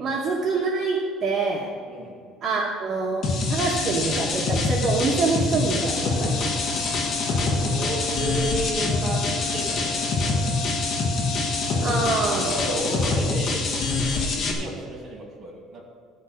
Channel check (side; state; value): both; normal; correlation 0.59